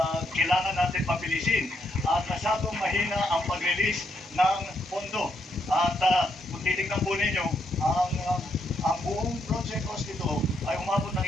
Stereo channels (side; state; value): both; normal; correlation 0.77